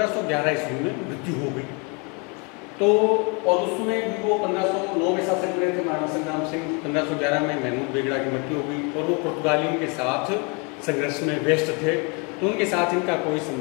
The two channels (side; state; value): right; quieter; 32.1 dB